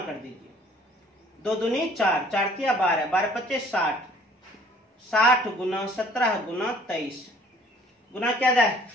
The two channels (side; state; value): both; normal; correlation 0.56